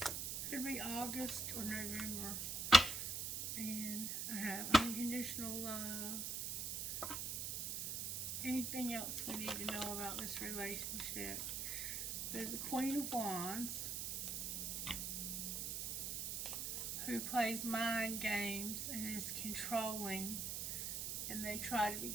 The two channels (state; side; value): noise; right; hiss, 2 dB below the sound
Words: Could be August or November. And I have unconditional love. Anything else we need to know about this relationship? There's the Queen of Wands, who plays mind games and is controlling, and they try to be